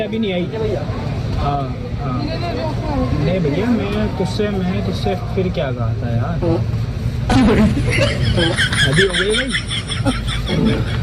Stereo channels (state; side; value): identical; both; correlation 1.00